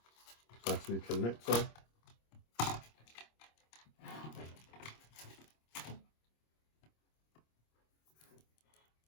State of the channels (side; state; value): right; late; 26 ms